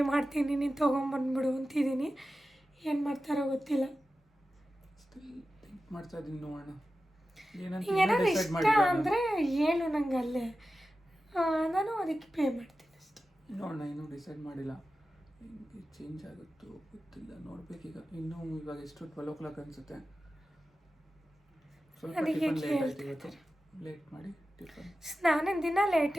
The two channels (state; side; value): normal; both; correlation 0.93